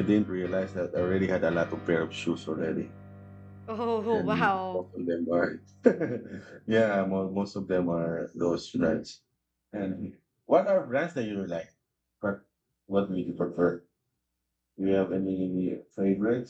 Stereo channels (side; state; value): both; identical; correlation 1.00